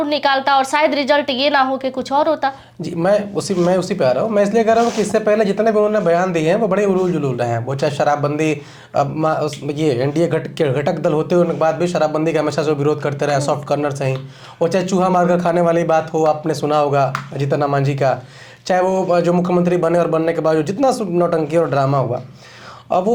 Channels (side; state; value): both; identical; correlation 1.00